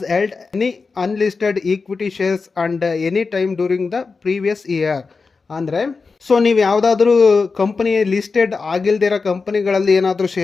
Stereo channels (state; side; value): quieter; right; 4.5 dB